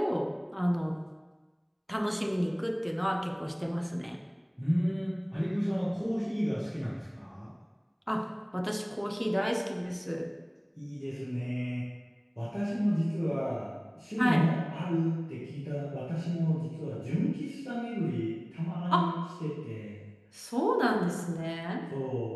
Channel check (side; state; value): both; identical; correlation 1.00